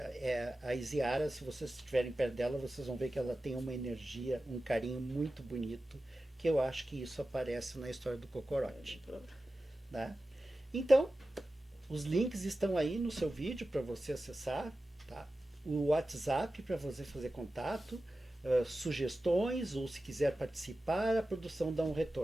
a Isiara, se vocês estiverem perto dela, vocês vão ver que ela tem uma energia, um carinho muito bonito, que eu acho que isso aparece na história do Cocorote. Né? Então, os links estão aí no seu vídeo para você acessar, tá? O WhatsApp para você fazer contato, sugestões, ou se quiser participar, a produção dá um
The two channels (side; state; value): both; normal; correlation 0.94